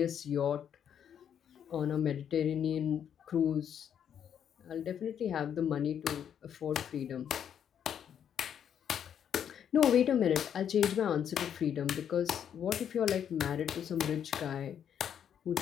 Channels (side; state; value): right; quieter; 8.8 dB